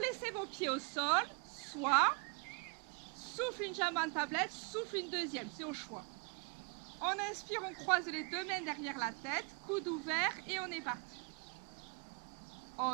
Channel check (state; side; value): quieter; left; 34.4 dB